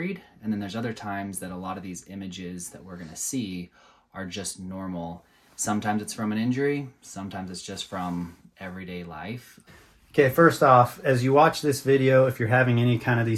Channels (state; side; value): identical; both; correlation 1.00